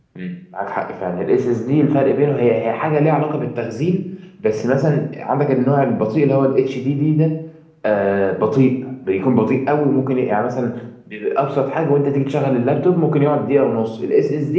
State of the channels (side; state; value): both; identical; correlation 1.00